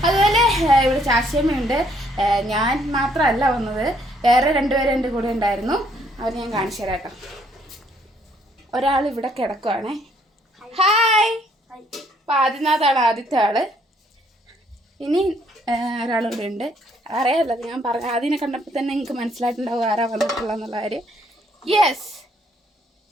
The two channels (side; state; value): both; normal; correlation 0.67